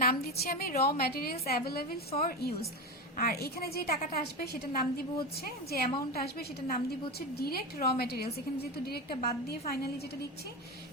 নাম দিচ্ছি আমি raw materials available for use. আর এখানে যে টাকাটা আসবে সেটার নাম দিব হচ্ছে, যে অ্যামাউন্টটা আসবে সেটার নাম দিব হচ্ছে ডিরেক্ট র ম্যাটেরিয়ালস। এখানে যেহেতু ডিরেক্টটা বাদ দিয়ে ফাইনালি যেটা লিখছি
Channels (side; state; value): both; normal; correlation 0.19